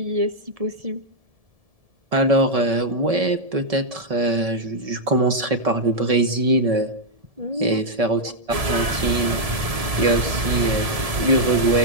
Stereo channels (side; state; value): left; late; 1.7 ms